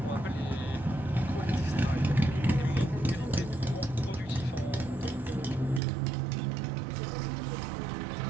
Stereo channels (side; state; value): left; drops out; at 5.8 s